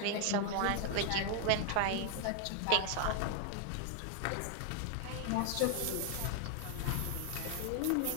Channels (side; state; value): both; different; correlation 0.00